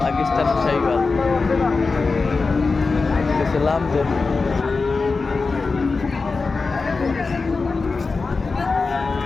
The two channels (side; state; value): right; quieter; 4.2 dB